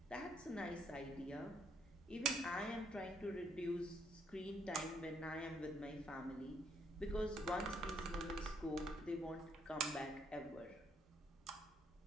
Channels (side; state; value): both; normal; correlation 0.71